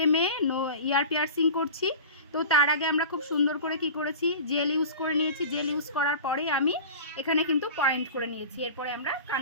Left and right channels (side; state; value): both; inverted; correlation -0.36